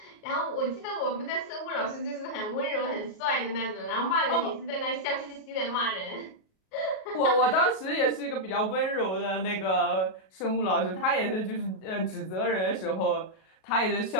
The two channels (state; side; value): late; right; 37 ms